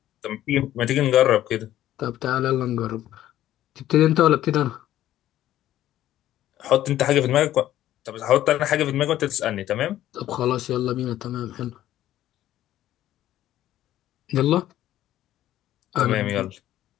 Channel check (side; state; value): right; quieter; 13.2 dB